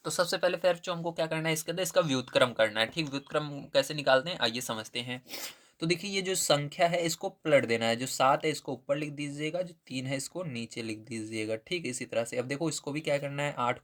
तो सबसे पहले फिर जो हमको क्या करना है, इसके अंदर इसका व्युत्क्रम करना है। ठीक, व्युत्क्रम कैसे निकालते हैं आइए समझते हैं। तो देखिए ये जो संख्या है इसको पलट देना है, जो 7 है इसको ऊपर लिख दीजिएगा, जो 3 है इसको नीचे लिख दीजिएगा। ठीक, इसी तरह से अब देखो इसको भी क्या करना है, 8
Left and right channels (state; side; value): identical; both; correlation 1.00